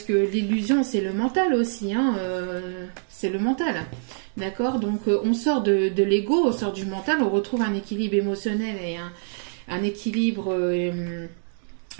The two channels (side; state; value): left; silent; 62 dB below the other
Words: que l'illusion, c'est le mental aussi, hein, c'est le mental, d'accord? Donc, on sort de l'ego, on sort du mental, on retrouve un équilibre émotionnel et un équilibre,